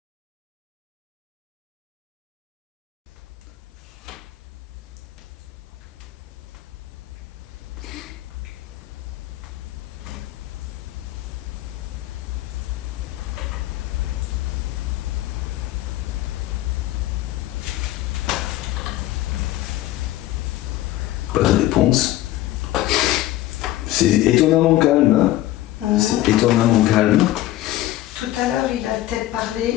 Pas de réponse. C'est étonnamment calme. Hein. C'est étonnamment calme. Tout à l'heure, il a peut-être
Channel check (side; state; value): right; quieter; 15.2 dB